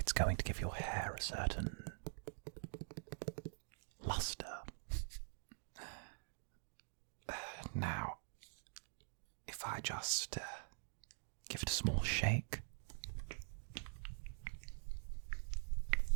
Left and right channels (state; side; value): silent; left; digital silence